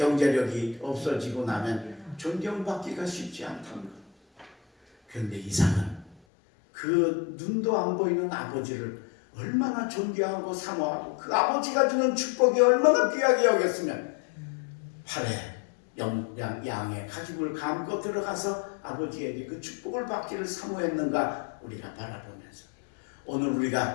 없어지고 나면 존경받기가 쉽지 않다는 것. 그런데 이삭은 그 눈도 안 보이는 아버지를 얼마나 존경하고 사모하고 그 아버지가 주는 축복이 얼마나 귀하게 여겼으면 팔에 양의 가죽을 감고 들어가서 아버지에게 그 축복을 받기를 사모했는가 우리가 바라보면서 오늘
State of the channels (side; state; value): right; drops out; at 6.2 s